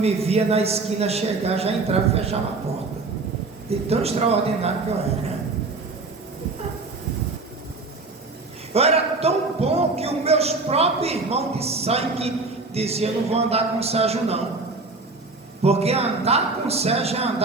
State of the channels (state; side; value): quieter; left; 3.6 dB